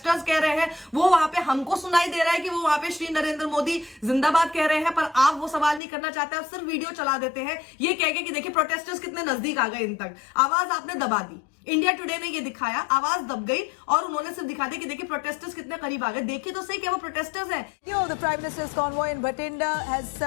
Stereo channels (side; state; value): right; drops out; at 5.8 s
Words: कह रहे हैं, वो वहां पे हमको सुनाई दे रहा है कि वो वहां पे श्री नरेंद्र मोदी जिंदाबाद कह रहे हैं, पर आप वो सवाल नहीं करना चाहते। आप सिर्फ वीडियो चला देते हैं ये कह के कि देखिए प्रोटेस्टर्स कितने नजदीक आ गए इन तक। आवाज आपने दबा दी, इंडिया टुडे ने ये दिखाया, आवाज दब गई और उन्होंने सिर्फ दिखा दिया कि देखिए प्रोटेस्टर्स कितने करीब आ गए। देखिए तो सही क्या वो प्रोटेस्टर्स हैं। The Prime Minister's convoy in Bathinda has